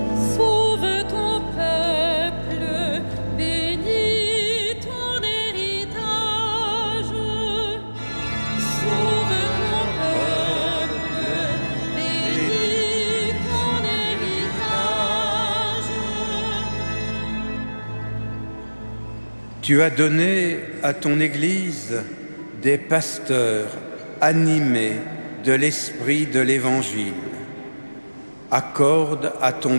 Sauve ton peuple, bénis ton héritage. Sauve ton peuple, bénis ton héritage. Tu as donné à ton Église des pasteurs animés de l'esprit de l'Évangile. Accorde à ton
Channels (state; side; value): inverted; both; correlation -1.00